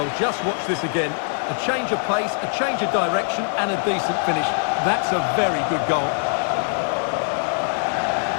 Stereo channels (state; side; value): silent; right; 63 dB below the other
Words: just watch this again. A change of pace, a change of direction, and a decent finish. That's a very good goal.